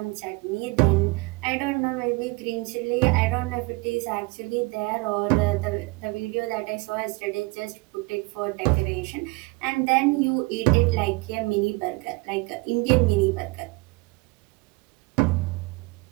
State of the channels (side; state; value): left; quieter; 25.3 dB